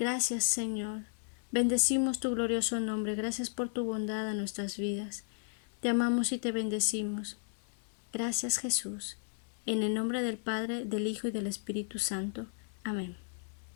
Señor. Bendecimos tu glorioso nombre. Gracias por tu bondad en nuestras vidas. Te amamos y te bendecimos. Gracias, Jesús. En el nombre del Padre, del Hijo y del Espíritu Santo. Amén.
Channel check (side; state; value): right; silent; 55 dB below the other